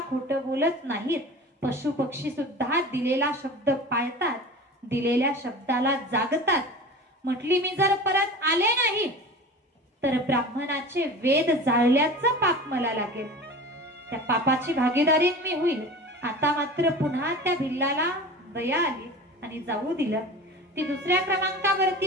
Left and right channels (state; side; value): normal; both; correlation 0.35